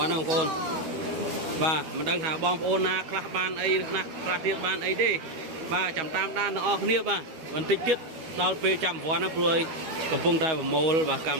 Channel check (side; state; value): left; late; 12 ms